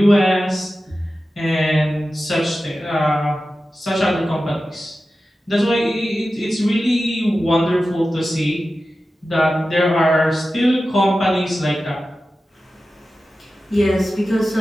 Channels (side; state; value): both; normal; correlation 0.93